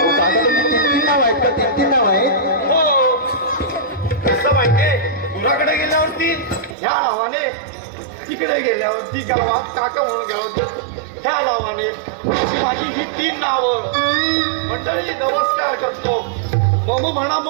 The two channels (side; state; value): left; drops out; at 6.8 s